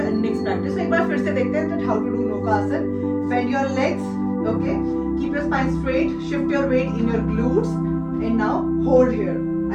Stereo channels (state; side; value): identical; both; correlation 1.00